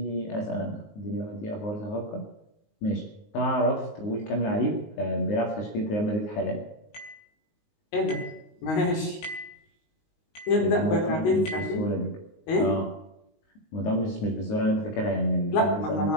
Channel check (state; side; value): late; right; 19 ms